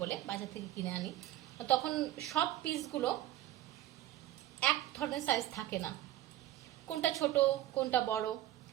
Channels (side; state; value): left; quieter; 14.0 dB